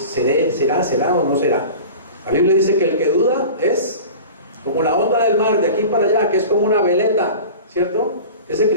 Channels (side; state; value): both; inverted; correlation -0.37